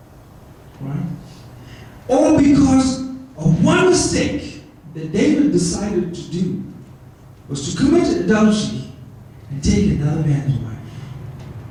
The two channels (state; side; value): identical; both; correlation 1.00